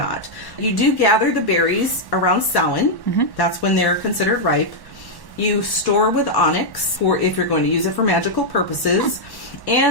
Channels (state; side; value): late; right; 1.1 ms